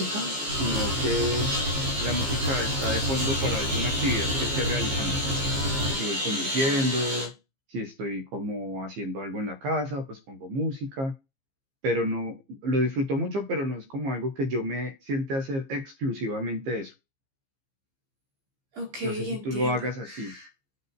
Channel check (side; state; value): left; late; 15 ms